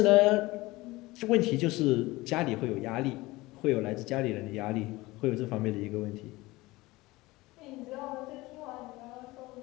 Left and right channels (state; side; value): quieter; right; 20.3 dB